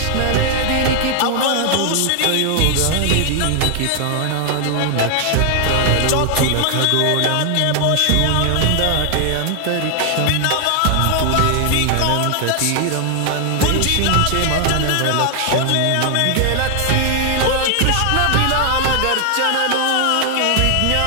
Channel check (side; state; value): both; different; correlation 0.00